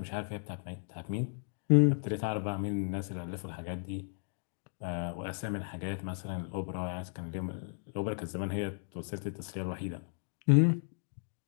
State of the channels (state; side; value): silent; right; digital silence